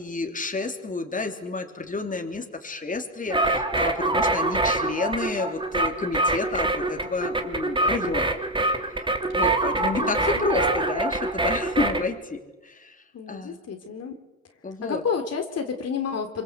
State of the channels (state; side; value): normal; both; correlation 0.10